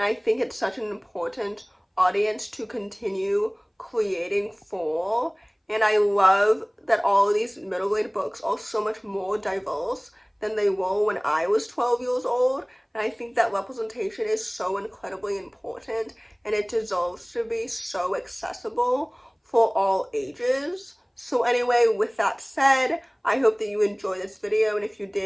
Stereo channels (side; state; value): both; identical; correlation 1.00